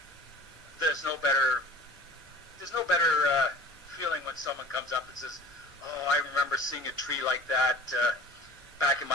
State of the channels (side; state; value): both; normal; correlation 0.43